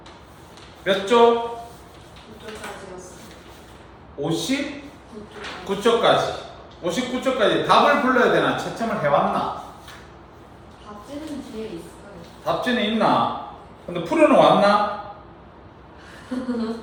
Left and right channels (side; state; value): both; identical; correlation 1.00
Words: 몇 조? 59쪽까지. 59쪽까지 답을 불러야 되나? 채점을 해왔나? 답지는 뒤에 있어요. 답지는 있나? 근데 풀어는 왔나?